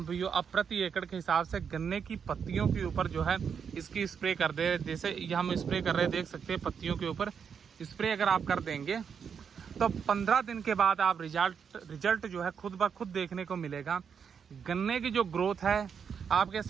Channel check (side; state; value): left; quieter; 6.9 dB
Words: भाइयों अब प्रति एकड़ के हिसाब से गन्ने की पत्तियों के ऊपर जो है इसकी स्प्रे कर दे। जैसे ये हम स्प्रे कर रहे हैं, देख सकते हैं पत्तियों के ऊपर स्प्रे अगर आप कर देंगे तो 15 दिन के बाद आप रिजल्ट जो है खुद ब खुद देखने को मिलेगा। गन्ने की जो ग्रोथ है आपके